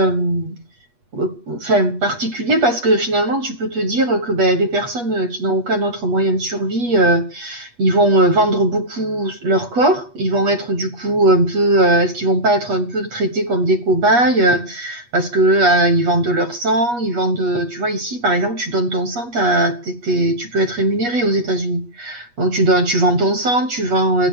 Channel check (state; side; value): late; left; 8.3 ms